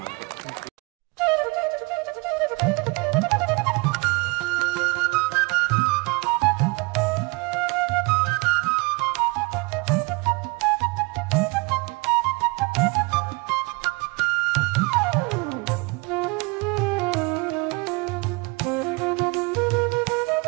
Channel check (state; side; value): quieter; left; 27.9 dB